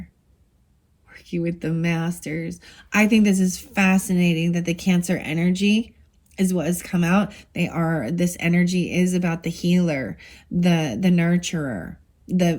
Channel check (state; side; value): identical; both; correlation 1.00